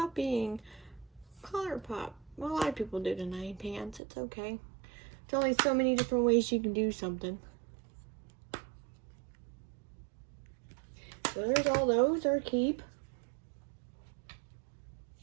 ColourPop. Well, a lot of people do tonight, pants. It's okay. There's only so many different ways you can do something. So there's all those, or keep.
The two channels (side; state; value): left; drops out; at 4.0 s